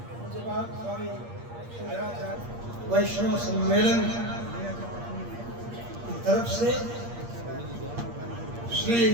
उसके बाद स्वामी शंकराचार्य वैष्णव सम्मेलन की तरफ से श्री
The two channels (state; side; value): late; left; 8.5 ms